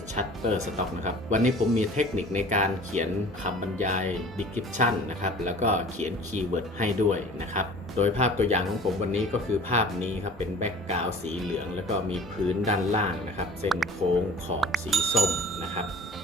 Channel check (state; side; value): normal; both; correlation 0.45